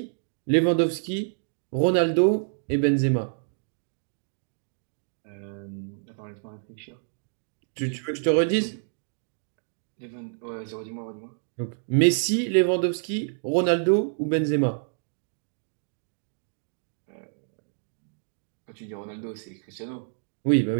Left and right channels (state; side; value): silent; left; digital silence